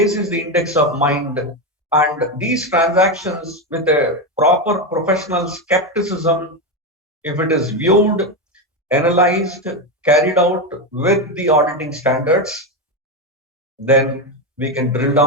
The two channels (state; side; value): normal; both; correlation 0.11